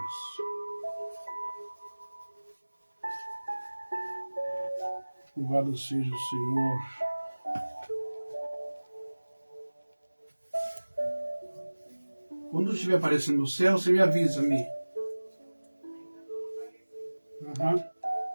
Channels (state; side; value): inverted; both; correlation -1.00